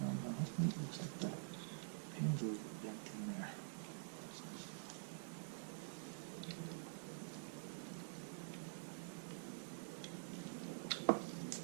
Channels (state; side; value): silent; left; digital silence